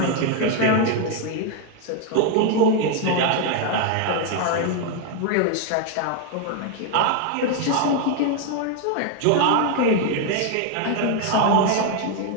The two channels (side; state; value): both; different; correlation 0.01